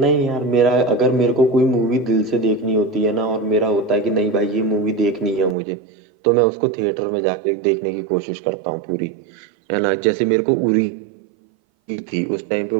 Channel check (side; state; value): left; drops out; at 5.6 s